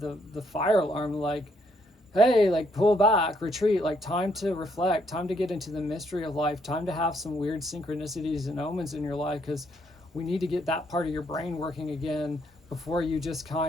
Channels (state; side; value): normal; both; correlation 0.72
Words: fire alarm, like, hey, like, pull back, retreat, like, time to reflect, time to get into the mystery of life, time to have some weird synchronicities and omens in your life, because we need to get that part of your brain working again before you just